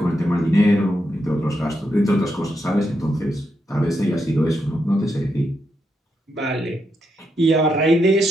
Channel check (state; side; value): normal; both; correlation 0.82